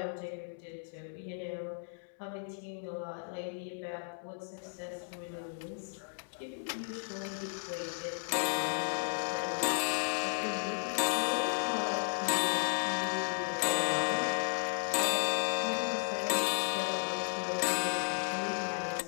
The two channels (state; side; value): silent; right; digital silence